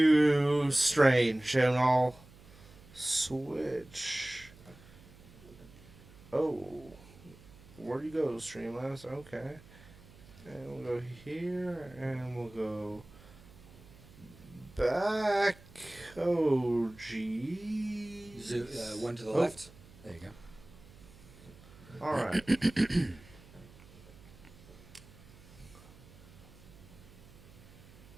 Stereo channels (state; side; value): noise; right; hum, 22 dB below the sound